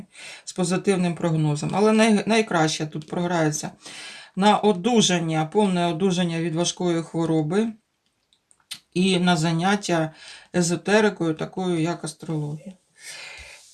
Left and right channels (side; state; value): both; identical; correlation 1.00